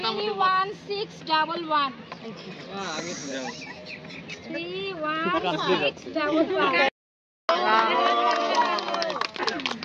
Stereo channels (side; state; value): both; identical; correlation 1.00